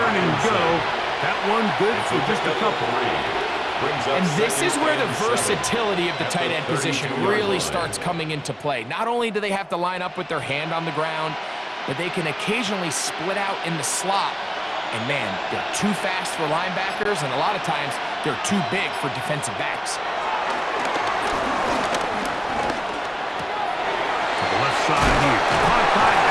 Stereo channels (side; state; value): both; identical; correlation 1.00